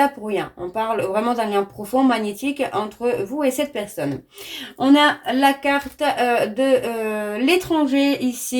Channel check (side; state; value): both; identical; correlation 1.00